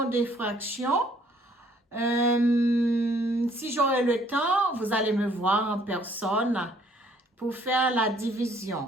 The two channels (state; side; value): normal; both; correlation 0.62